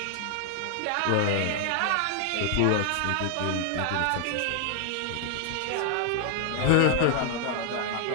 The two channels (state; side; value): different; both; correlation 0.00